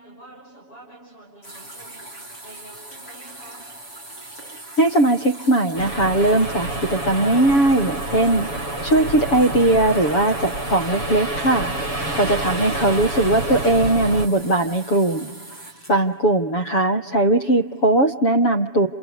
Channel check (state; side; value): late; right; 7.1 ms